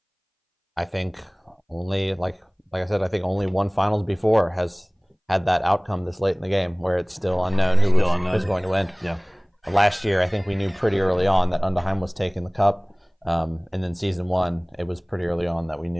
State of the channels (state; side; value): identical; both; correlation 1.00